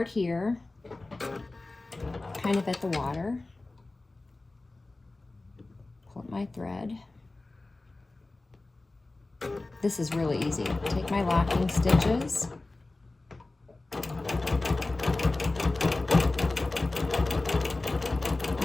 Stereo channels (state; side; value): quieter; right; 3.1 dB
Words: here, kind of at the water. Pull up my thread. This is really easy. Take my locking stitches.